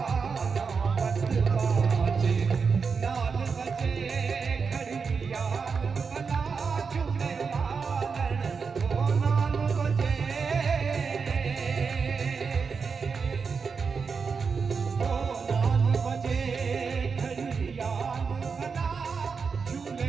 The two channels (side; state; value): left; quieter; 5.4 dB